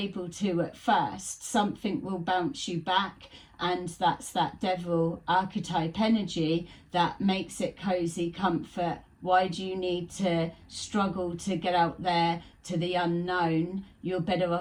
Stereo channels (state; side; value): identical; both; correlation 1.00